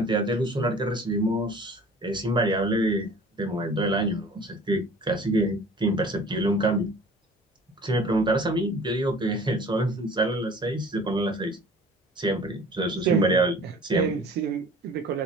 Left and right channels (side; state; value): both; normal; correlation 0.47